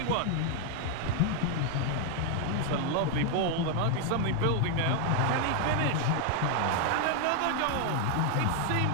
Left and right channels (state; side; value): different; both; correlation 0.00